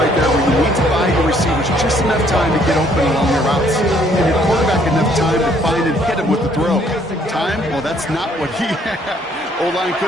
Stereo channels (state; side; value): normal; both; correlation 0.64